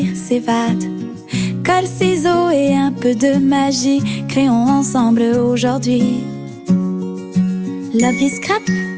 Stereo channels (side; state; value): both; identical; correlation 1.00